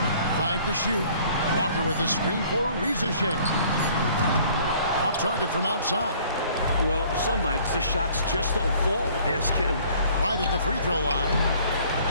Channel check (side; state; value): both; inverted; correlation -0.56